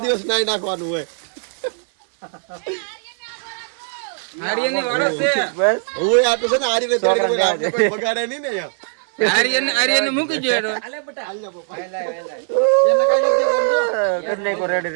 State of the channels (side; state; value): left; silent; 66 dB below the other